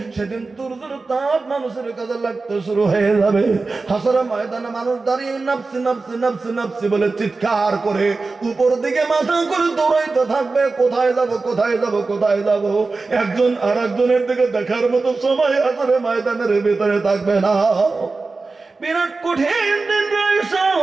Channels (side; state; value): left; quieter; 3.8 dB